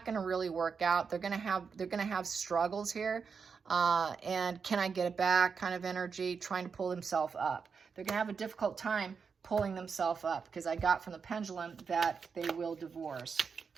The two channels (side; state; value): left; quieter; 5.7 dB